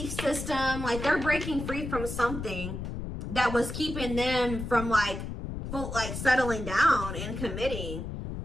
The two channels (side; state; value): left; noise; rumble, 6 dB below the sound